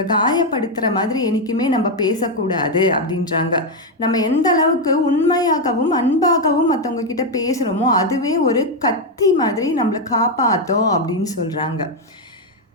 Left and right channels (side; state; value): both; normal; correlation 0.04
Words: காயப்படுத்துகிற மாதிரி என்றைக்குமே நம்ம பேசக்கூடாது அப்படின்றாங்க. நம்ம எந்த அளவுக்கு உண்மையாகவும் அன்பாகவும் மற்றவங்க கிட்ட பேசுகிறோமோ அதுவே ஒரு கத்தி மாதிரி நம்மளை காப்பாற்றும் அப்படின்னு சொல்கிறாங்க.